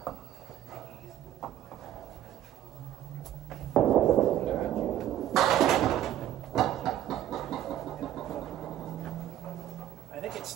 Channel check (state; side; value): quieter; left; 11.9 dB